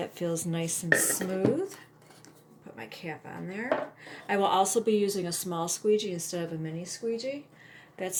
feels nice and smooth. Put my cap on there. I will also be using a small squeegee instead of a mini squeegee. That's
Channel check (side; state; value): both; identical; correlation 1.00